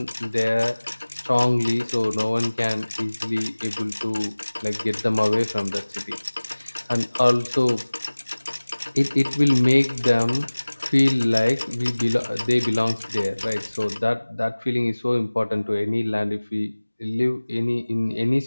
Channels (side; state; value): both; inverted; correlation -1.00